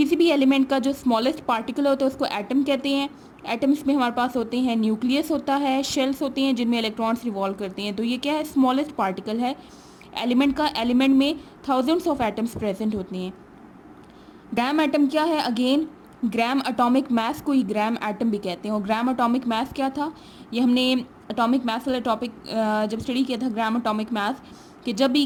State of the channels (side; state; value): both; identical; correlation 1.00